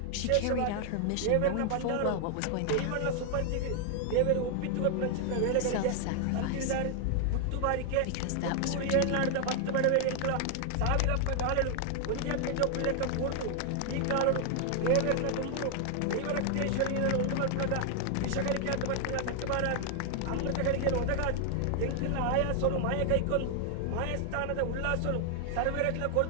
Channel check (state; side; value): different; both; correlation 0.00